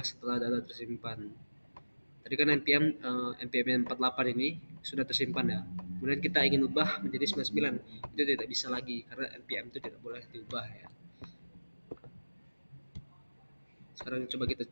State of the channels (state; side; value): inverted; both; correlation -1.00